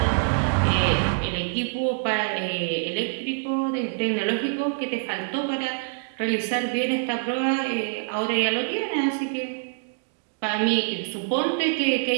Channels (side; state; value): left; silent; digital silence